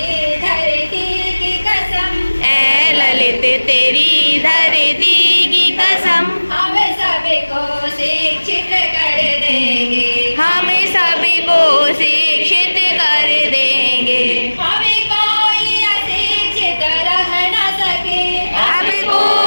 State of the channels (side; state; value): both; inverted; correlation -1.00